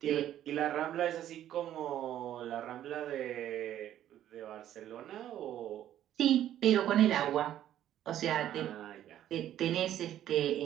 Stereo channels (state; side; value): quieter; left; 11.7 dB